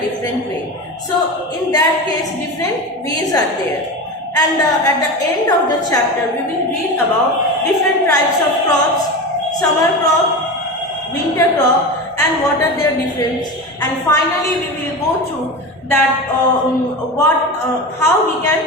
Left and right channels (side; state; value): both; normal; correlation 0.26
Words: way. So in that case, different ways are there. And at the end of the chapter, we will read about different types of crops: summer crop, winter crop, and what are their difference. And finally, we will go through that how we